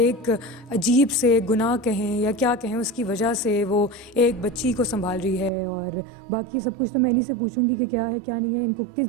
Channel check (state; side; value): drops out; left; at 5.5 s